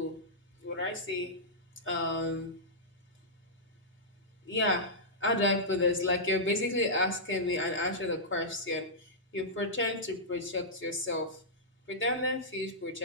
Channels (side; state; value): both; normal; correlation -0.13